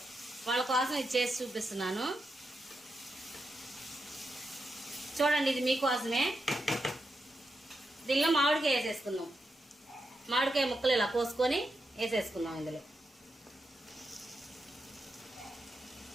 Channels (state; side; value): normal; both; correlation 0.86